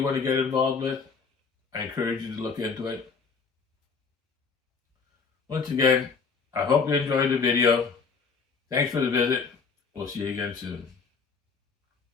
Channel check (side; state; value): right; quieter; 5.2 dB